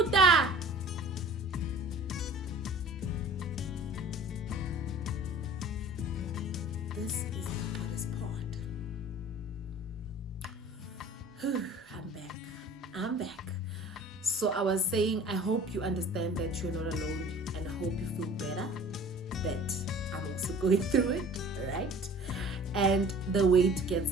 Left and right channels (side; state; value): both; normal; correlation 0.45